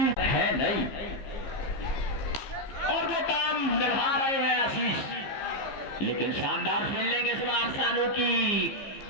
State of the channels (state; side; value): late; right; 15 ms